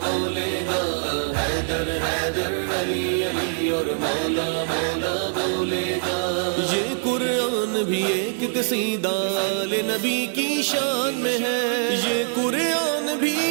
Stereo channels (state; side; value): silent; left; digital silence